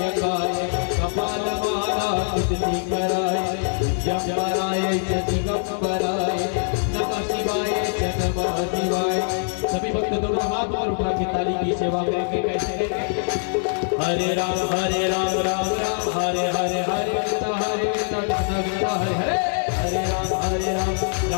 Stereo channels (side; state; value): right; silent; 63 dB below the other